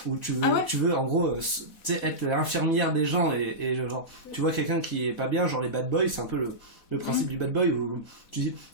Où tu veux en gros, tu sais, être l'infirmière des gens et genre, tu vois quelqu'un qui est pas bien, genre les bad boys, c'est un peu le principe du bad boy où tu dis,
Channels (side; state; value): right; late; 4.1 ms